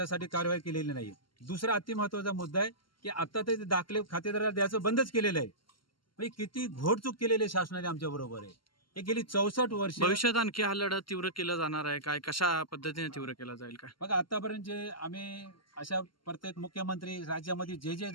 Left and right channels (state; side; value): late; right; 0.73 ms